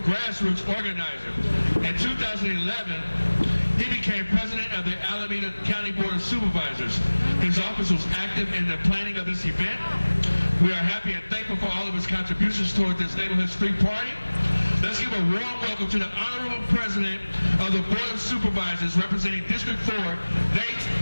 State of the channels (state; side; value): inverted; both; correlation -1.00